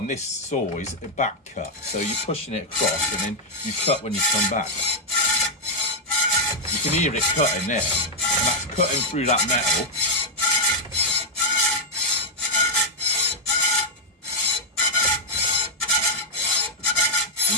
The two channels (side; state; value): both; normal; correlation -0.02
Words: this saw is a back cut, so you're pushing it across, and then you cut when you come back. You can hear it cutting there, and that's cutting through that metal.